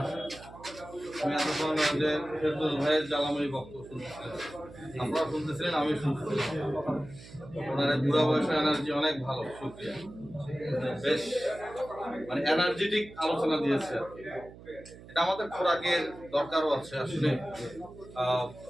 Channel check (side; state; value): right; noise; hum, 18 dB below the sound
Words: আমি এতক্ষণ যে ফেরদৌস ভাইয়ের জ্বালাময়ী বক্তব্য শুনতেছিলাম, আপনারা শুনতেছিলেন, আমি শুনতেছিলাম। ওনার বুড়া বয়সের এনার্জি অনেক ভালো, শুকরিয়া। বেশ মানে এনার্জেটিক আলোচনা দিয়েছে আর কি। এটা আমাদের খোরাকের দরকারও আছে আসলে।